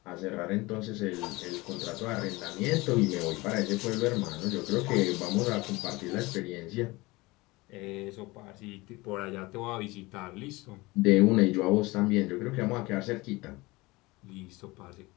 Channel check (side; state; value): right; quieter; 22.2 dB